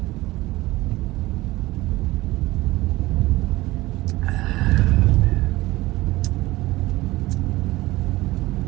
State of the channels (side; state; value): left; quieter; 18.9 dB